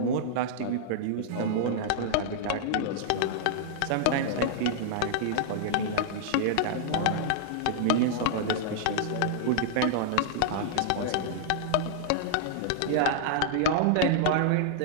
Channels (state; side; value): different; both; correlation -0.01